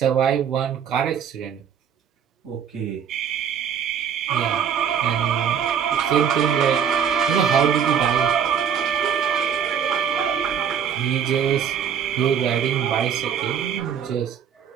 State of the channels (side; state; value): left; quieter; 8.0 dB